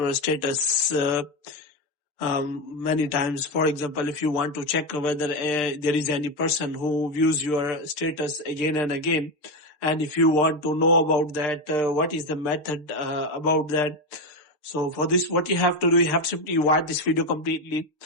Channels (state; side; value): late; right; 6.8 ms